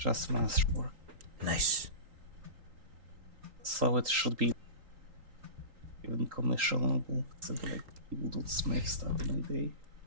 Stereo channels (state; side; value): late; left; 3.8 ms